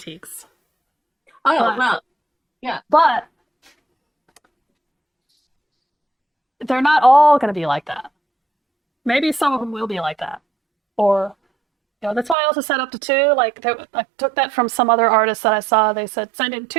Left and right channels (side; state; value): left; drops out; at 12.4 s